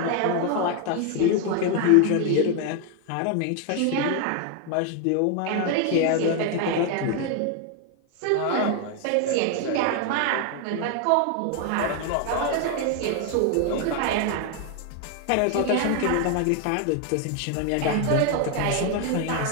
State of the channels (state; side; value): different; both; correlation 0.01